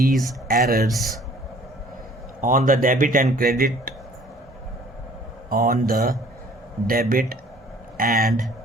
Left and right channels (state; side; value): normal; both; correlation 0.55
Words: on the debit and